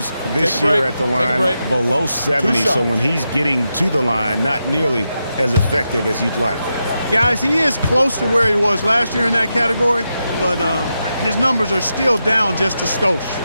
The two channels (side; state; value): both; inverted; correlation -0.87